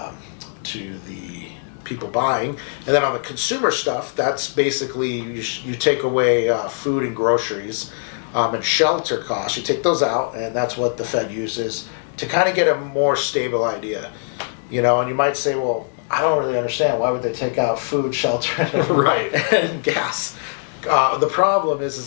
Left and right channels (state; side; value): silent; right; digital silence